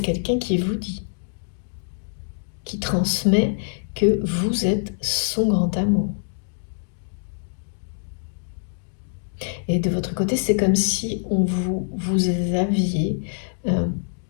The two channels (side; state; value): right; silent; digital silence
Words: quelqu'un qui vous dit, qui transmet que vous êtes son grand amour. Et de votre côté, c'est comme si vous aviez